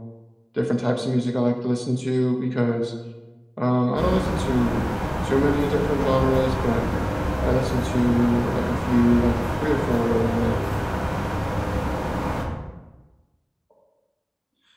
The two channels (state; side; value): identical; both; correlation 1.00